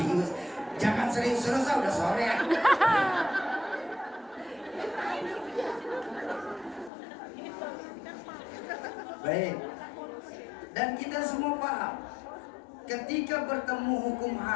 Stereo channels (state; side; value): drops out; right; at 6.9 s